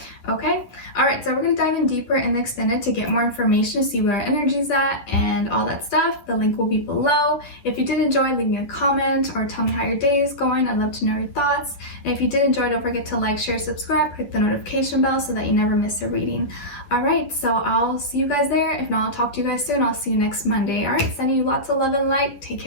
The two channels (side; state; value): right; late; 10 ms